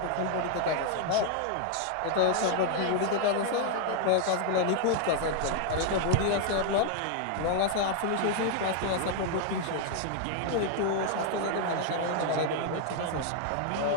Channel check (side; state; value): both; different; correlation 0.00